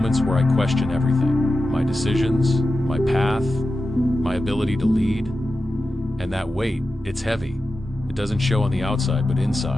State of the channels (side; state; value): both; normal; correlation 0.92